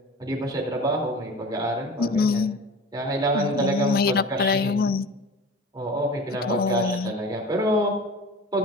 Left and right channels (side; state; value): both; normal; correlation 0.37